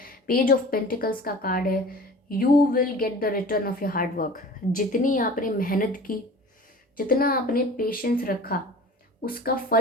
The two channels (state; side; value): normal; both; correlation 0.41